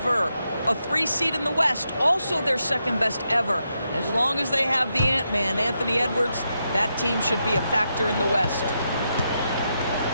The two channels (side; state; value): both; inverted; correlation -0.83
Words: A 3 seed in the West, also their second best ever. As long as they have the Ant-Man, Anthony Edwards, that team should be a factor in the West.